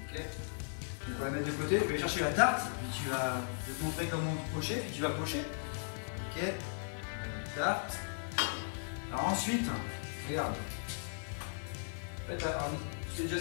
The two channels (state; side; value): silent; right; digital silence